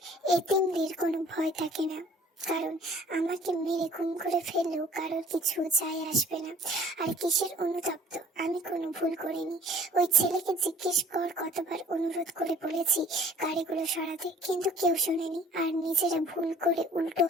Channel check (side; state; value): both; normal; correlation 0.52